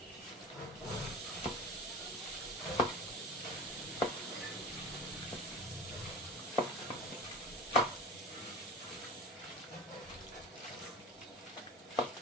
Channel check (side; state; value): both; normal; correlation 0.34